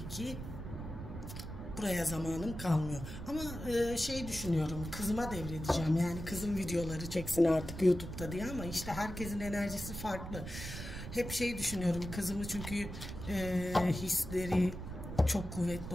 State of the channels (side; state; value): right; noise; rumble, 8 dB below the sound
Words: ki buraya zamanım kalmıyor. Ama düşünüyorum, kızıma devredeceğim. Yani kızım videoları çeksin artık YouTube'da diye, ama işte herkesin enerjisi farklı. Hep düşünüyorum, kızımı çünkü hisleri çok kuvvetli